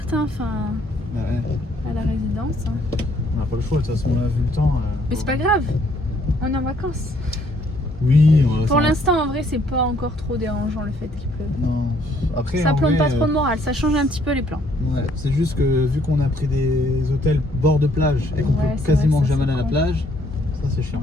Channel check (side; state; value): both; normal; correlation 0.66